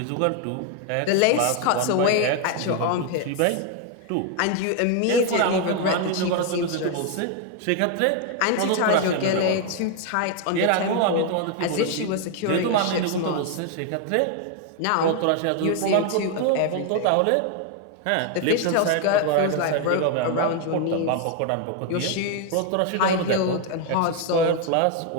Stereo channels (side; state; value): both; different; correlation 0.01